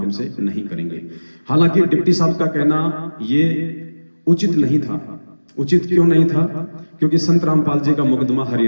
से नहीं करेंगे। हालांकि डिप्टी साहब का कहना ये उचित नहीं था। उचित क्यों नहीं था? क्योंकि संत रामपाल जी का मुकदमा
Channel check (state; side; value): inverted; both; correlation -1.00